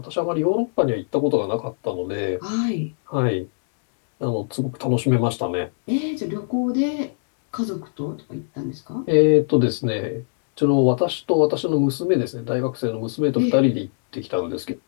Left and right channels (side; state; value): right; silent; digital silence